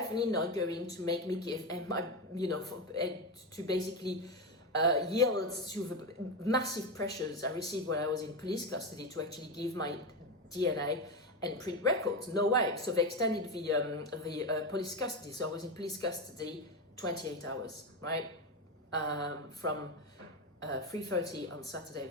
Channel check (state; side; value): normal; both; correlation 0.15